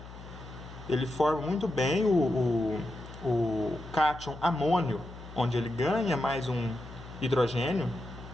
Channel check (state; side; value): noise; left; hum, 15 dB below the sound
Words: Ele forma muito bem o cátion amônio, onde ele ganha mais um hidrogênio,